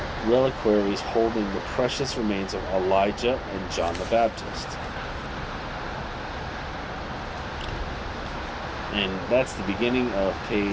reliquaries holding the precious remains of Elijah and John the Baptist. And that's the beginning of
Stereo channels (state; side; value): identical; both; correlation 1.00